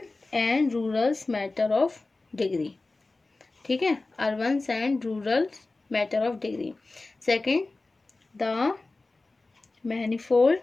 and rural matter of degree. ठीक है, urban and rural matter of degree. Second, the manifold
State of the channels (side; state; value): right; quieter; 3.3 dB